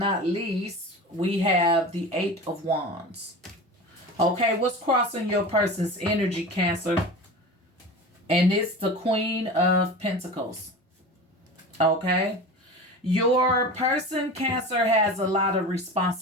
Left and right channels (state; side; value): normal; both; correlation 0.32